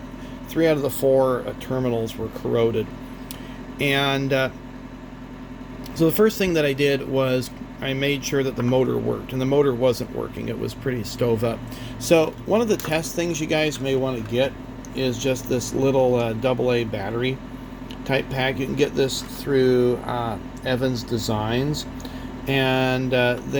3 out of the 4 terminals were corroded. And so the first thing that I did was I made sure that the motor worked, and the motor wasn't working. It was pretty stove up. So one of the test things you guys may want to get is just this little AA battery type pack. You can get this through Evans Designs. And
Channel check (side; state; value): both; identical; correlation 1.00